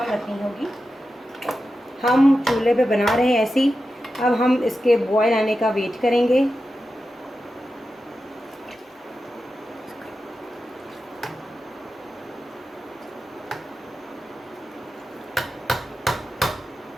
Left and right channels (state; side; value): normal; both; correlation 0.91